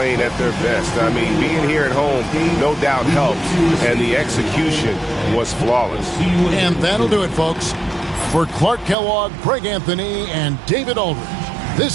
at their best. I mean, being here at home, no doubt helps, and the execution was flawless. And that'll do it, folks. For Clark Kellogg, Greg Anthony, and David Aldridge,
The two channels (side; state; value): left; drops out; at 9.0 s